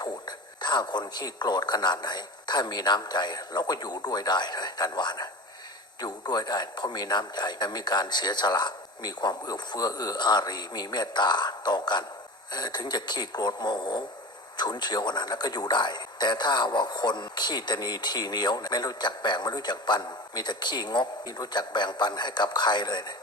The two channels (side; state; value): both; normal; correlation 0.32